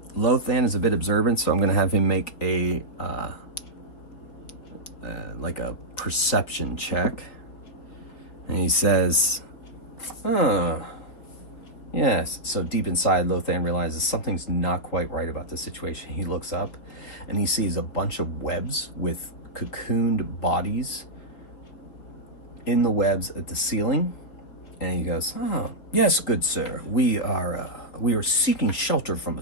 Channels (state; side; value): late; right; 4.6 ms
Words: is a bit observant, so I'm going to have him make a like a perception check. And he says, yes. So deep inside, Lothan realizes something's not quite right about the situation. He looks up, and he sees a bunch of webs with cocooned bodies in the webs at the ceiling. And he goes, yes, good sir. We are seeking shelter from